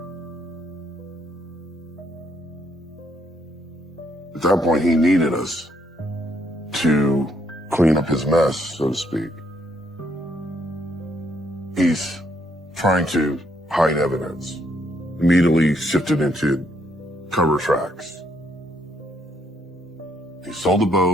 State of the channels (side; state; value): both; normal; correlation 0.72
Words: At that point, he needed us to clean up his mess, so to speak. He's trying to hide evidence, immediately shifted into cover tracks. He sold the